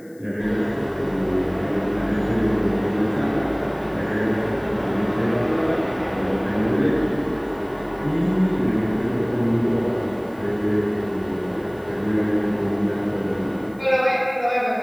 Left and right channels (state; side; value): noise; left; hiss, 29 dB below the sound